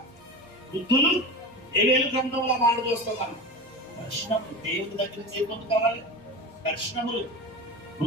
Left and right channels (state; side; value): normal; both; correlation 0.26